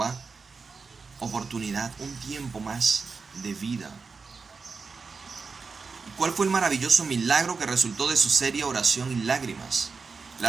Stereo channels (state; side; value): quieter; left; 4.8 dB